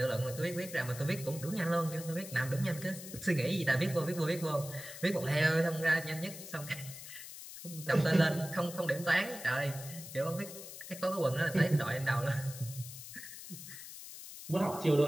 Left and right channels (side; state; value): left; noise; hiss, 12 dB below the sound